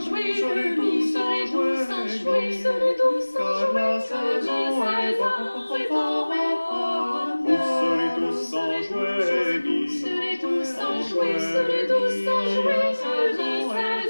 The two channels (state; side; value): inverted; both; correlation -1.00